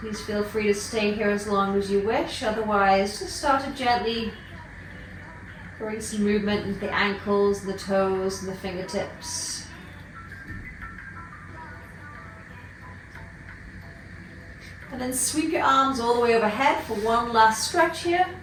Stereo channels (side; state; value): both; identical; correlation 1.00